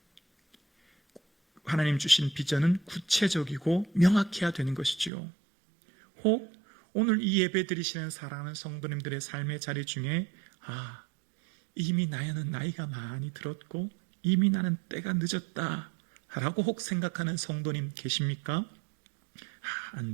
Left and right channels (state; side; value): drops out; left; at 5.1 s